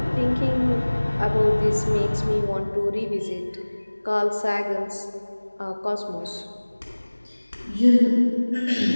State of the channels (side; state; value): both; inverted; correlation -1.00